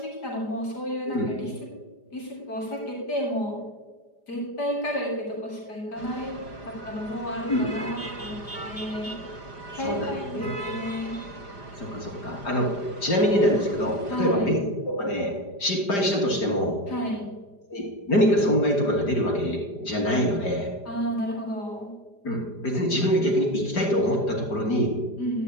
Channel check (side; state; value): right; late; 5.0 ms